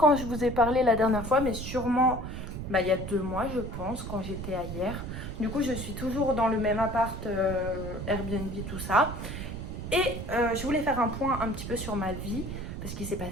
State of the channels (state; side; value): noise; right; rumble, 6 dB below the sound